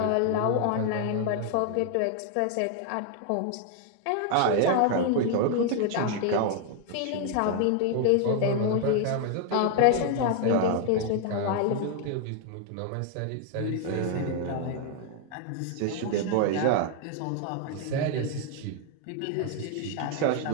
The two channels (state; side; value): different; both; correlation 0.00